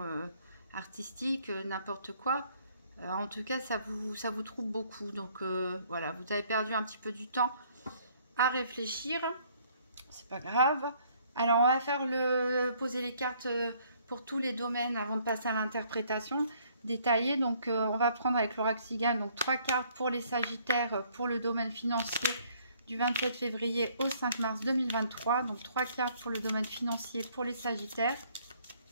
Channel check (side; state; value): both; inverted; correlation -0.63